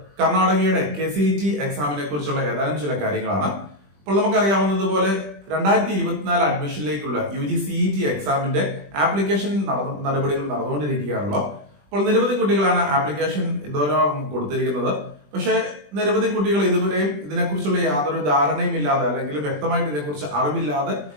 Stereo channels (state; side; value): late; left; 20 ms